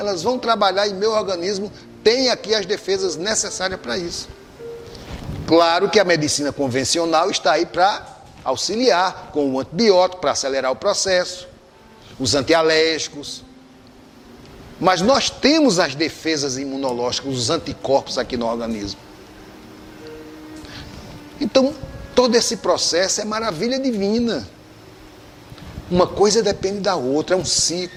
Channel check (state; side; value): identical; both; correlation 1.00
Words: vão trabalhar e meu organismo tem aqui as defesas necessárias para isso. Claro que a medicina convencional está aí para auxiliar com o antibiótico, para acelerar o processo, os antialérgicos. Mas nós temos as defesas imunológicas, os anticorpos aqui no organismo. Então, todo esse processo é maravilha divina. Uma coisa depende da outra, é um